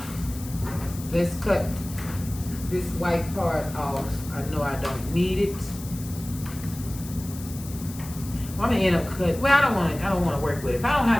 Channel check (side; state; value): left; noise; hiss, 15 dB below the sound